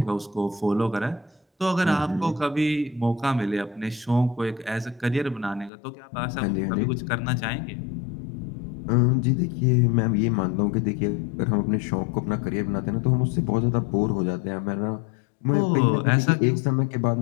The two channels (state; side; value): drops out; right; at 5.7 s